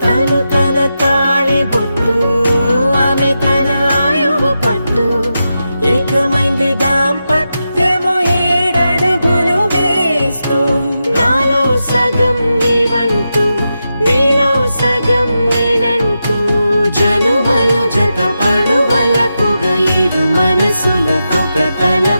తను తన తాళి బొట్టు ఆమె తన ఆయువు పట్టు ఏకమైంది దాంపత్యము 7 అడుగులు వేస్తూ నాలో సగం నీవంటూ నీలో సగం నేనంటూ జనుమలు జతపడువలపుగా ఇరు మనసులకొక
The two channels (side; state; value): both; inverted; correlation -0.89